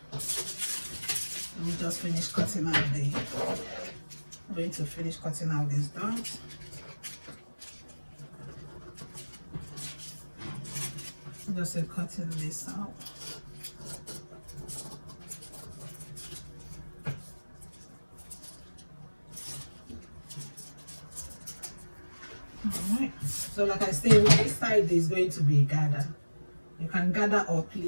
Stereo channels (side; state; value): both; inverted; correlation -1.00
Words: let me just finish cutting out I'm going to finish cutting out these dots. Just cutting this out. All right, so like I said, this side is going to be gather. You can gather or